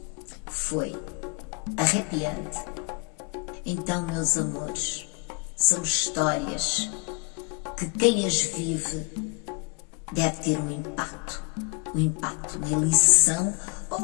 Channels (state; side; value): quieter; right; 29.5 dB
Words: Foi arrepiante. Então, meus amores, são histórias que quem as vive deve ter um impacto, uma lição,